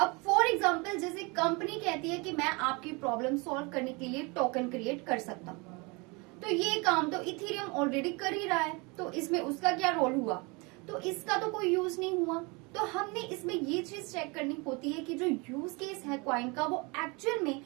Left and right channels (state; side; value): quieter; left; 28.2 dB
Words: फॉर एग्जांपल जैसे कंपनी कहती है कि मैं आपकी प्रॉब्लम सॉल्व करने के लिए टोकन क्रिएट कर सकता हूँ, तो ये काम तो इथेरियम ऑलरेडी कर ही रहा है, तो इसमें उसका क्या रोल हुआ? तो इसका तो कोई यूज नहीं हुआ। तो हमने इसमें ये चीज चेक करनी होती है कि जो यूज केस है कॉइन का वो एक्चुअल में